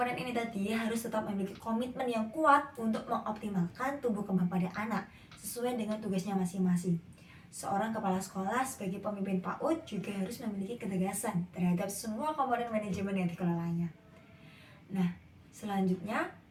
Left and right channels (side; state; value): both; identical; correlation 1.00